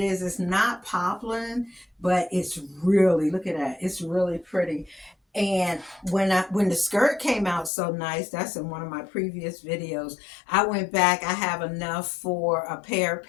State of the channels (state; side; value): drops out; right; at 7.7 s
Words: It's not poplin, but it's really, look at that. It's really pretty. And when the skirt came out so nice, that's in one of my previous videos. I went back. I have enough for a pair of